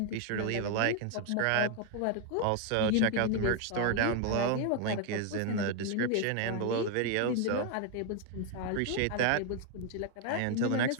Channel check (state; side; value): different; both; correlation 0.01